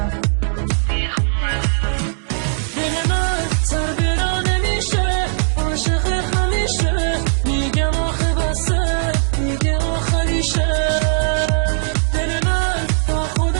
دل من سر برا نمیشه عاشق همیشه میگم آخه بسه میگه آخریشه دل من با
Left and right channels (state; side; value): silent; left; digital silence